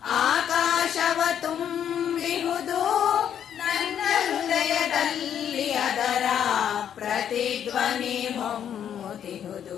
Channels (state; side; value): quieter; right; 9.2 dB